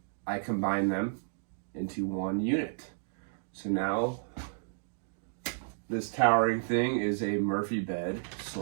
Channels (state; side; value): silent; left; digital silence